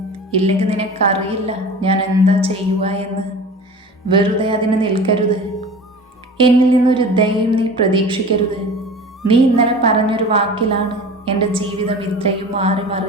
ഇല്ലെങ്കിൽ നിനക്കറിയില്ല ഞാൻ എന്താ ചെയ്യുക എന്ന്. വെറുതെ അതിന് നിൽക്കരുത്. എന്നിൽ നിന്നൊരു ദയയും നീ പ്രതീക്ഷിക്കരുത്. നീ ഇന്നലെ പറഞ്ഞൊരു വാക്കിലാണ് എൻ്റെ ജീവിതം ഇത്രയും മാറി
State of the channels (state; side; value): normal; both; correlation 0.37